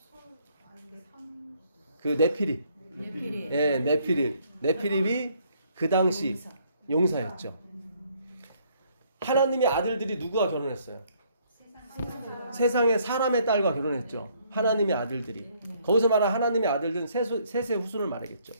그 네피림. 예, 네피림. 네피림이 그 당시 용사였죠. 하나님의 아들들이 누구와 결혼했어요? 세상의 사람의 딸과 결혼했죠. 하나님의 아들들이. 거기서 말한 하나님의 아들들은 셋의 후손을 말하겠죠.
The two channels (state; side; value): inverted; both; correlation -0.65